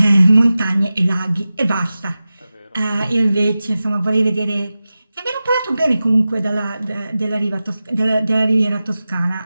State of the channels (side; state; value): both; inverted; correlation -0.95